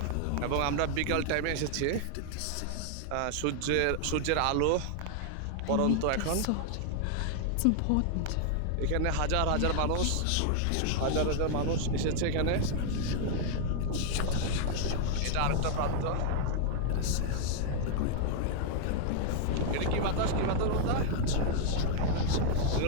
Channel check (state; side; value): different; both; correlation 0.00